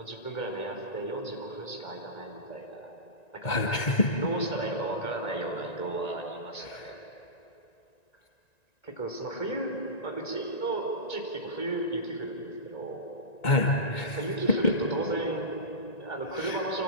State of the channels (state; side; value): late; right; 1.9 ms